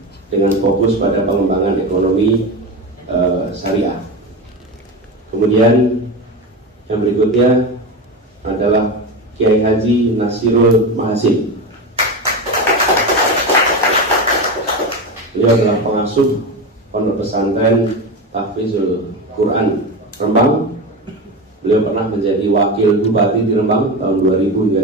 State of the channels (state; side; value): normal; both; correlation 0.21